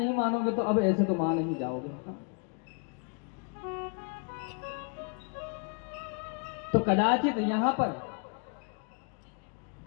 मानोगे तो अब ऐसे तो मान नहीं जाओगे। तो कदाचित यहाँ पर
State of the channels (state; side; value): quieter; right; 37.3 dB